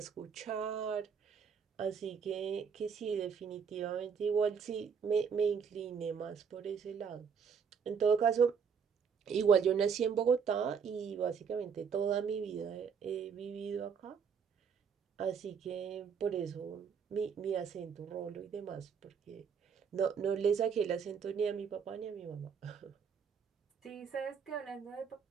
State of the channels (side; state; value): left; quieter; 6.6 dB